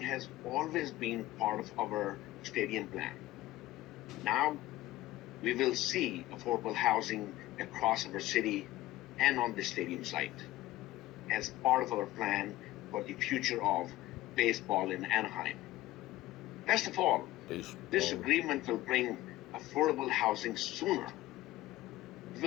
has always been part of our stadium plan. Now, we will see affordable housing across our city and on the stadium site as part of our plan for the future of baseball in Anaheim. Best of all, this agreement will bring affordable housing sooner. We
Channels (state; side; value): quieter; right; 16.5 dB